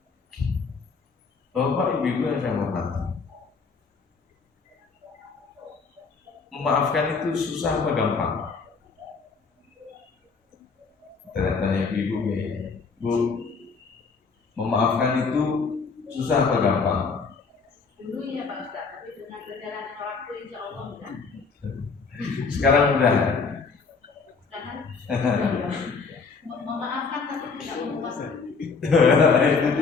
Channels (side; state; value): right; quieter; 4.9 dB